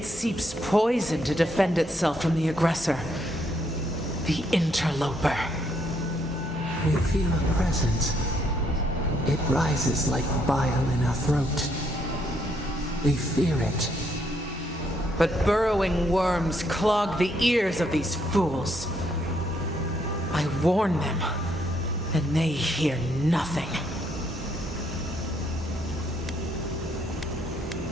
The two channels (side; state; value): both; normal; correlation 0.72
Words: seeps poison to defend itself from the aggressor. The interloper. We feel a presence. It rises like bile in our throat. We fear it. But burrowing worms clog the ears of these fools. I warn them, and they hear nothing.